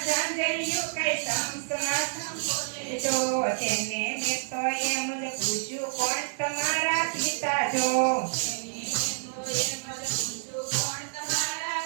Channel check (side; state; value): left; silent; 55 dB below the other